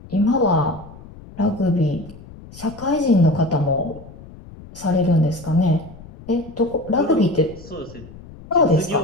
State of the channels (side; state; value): left; noise; rumble, 18 dB below the sound